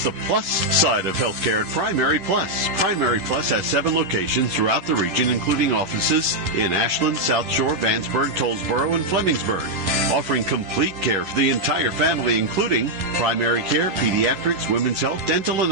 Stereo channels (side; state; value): left; late; 11 ms